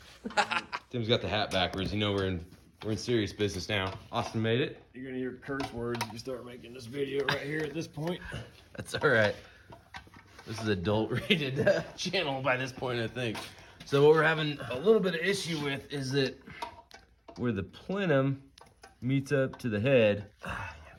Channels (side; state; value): both; identical; correlation 1.00